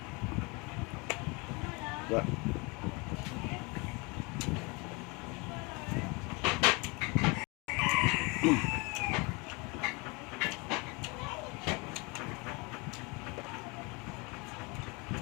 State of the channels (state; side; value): quieter; right; 28.5 dB